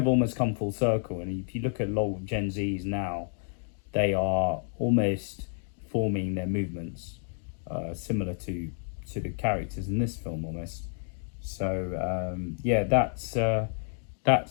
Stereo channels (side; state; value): right; silent; 58 dB below the other